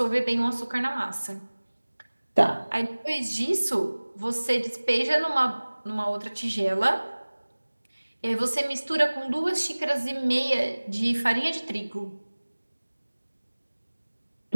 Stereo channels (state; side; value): inverted; both; correlation -1.00